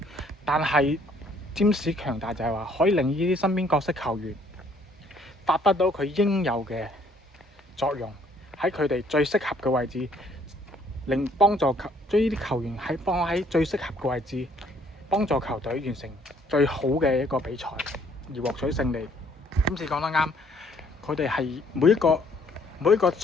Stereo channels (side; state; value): both; normal; correlation 0.62